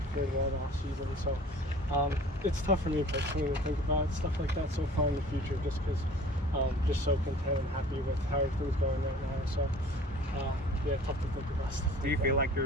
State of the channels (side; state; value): both; normal; correlation 0.47